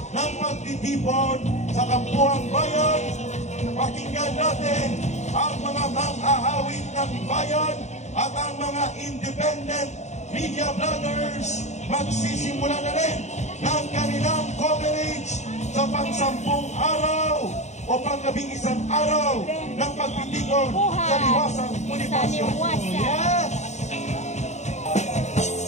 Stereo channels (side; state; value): right; late; 0.33 ms